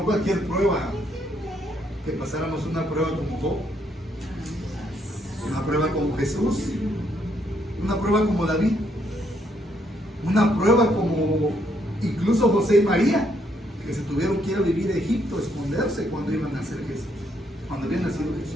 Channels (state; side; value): normal; both; correlation 0.73